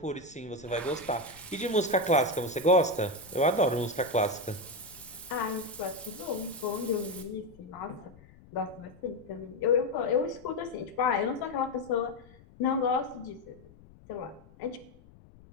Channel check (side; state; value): left; noise; rumble, 23 dB below the sound